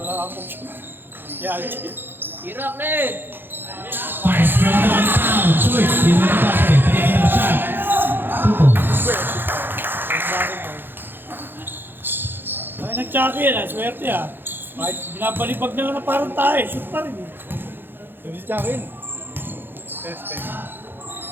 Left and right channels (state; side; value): late; left; 0.099 ms